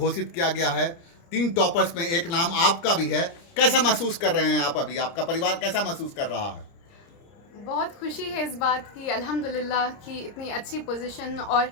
किया गया है? 3 टॉपर्स में एक नाम आपका भी है। कैसा महसूस कर रहे हैं आप अभी? आपका परिवार कैसा महसूस कर रहा है? बहुत खुशी है इस बात की अल्हम्दुलिल्लाह कि इतनी अच्छी पोजीशन और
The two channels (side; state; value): right; late; 30 ms